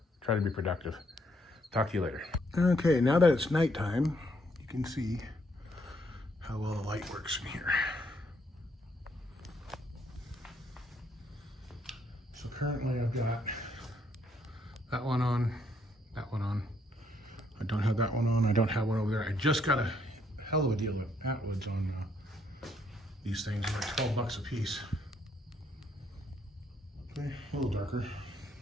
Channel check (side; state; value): both; normal; correlation 0.71